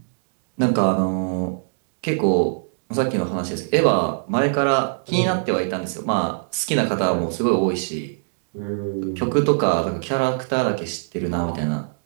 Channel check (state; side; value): silent; left; digital silence